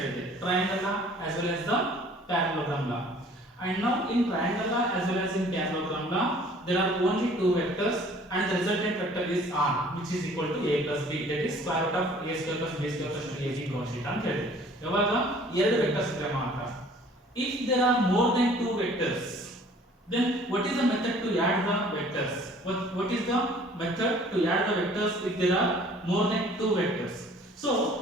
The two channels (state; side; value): normal; both; correlation 0.53